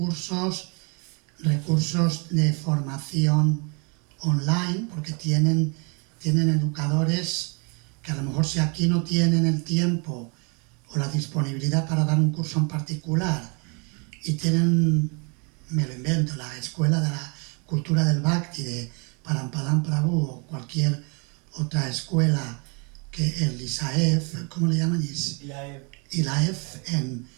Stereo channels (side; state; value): left; quieter; 33.5 dB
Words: de formación online, porque tienen educadores que a lo mejor, si aquí no tienen el tiempo o la disponibilidad para dar un curso en particular y tienen, me lo invento, la Escuela de la Cultura del Bhakti de Parampadam Prabhu o cualquier otra escuela, que el ISAEF, ¿cómo le llaman? ILAEF en